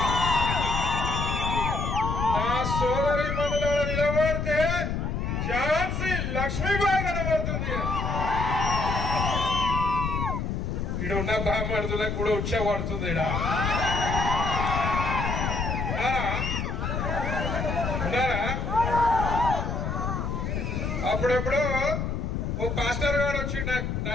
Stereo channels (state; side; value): noise; left; rumble, 2 dB below the sound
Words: నా సోదరి మనులలో నిలబడితే ఝాన్సీ లక్ష్మీబాయి కనబడుతుంది. ఈడున్న బామ్మడుతులకు కూడా ఉచ్చబడుతుంది. ఉన్నారా? అప్పుడెప్పుడు ఓ పాస్టర్ గారు వచ్చి నా